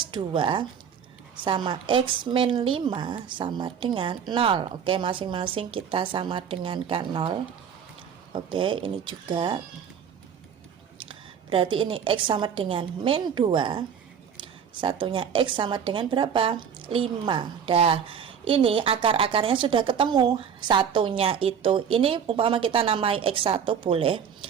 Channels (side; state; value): left; quieter; 7.6 dB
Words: 2 sama x min 5 sama dengan 0. Oke, masing-masing kita sama dengan kan 0. Oke, ini juga. berarti ini X sama dengan min 2, satunya X sama dengan berapa? 5. Dah, ini akar-akarnya sudah ketemu. Satunya itu, ini umpama kita namai X1 boleh,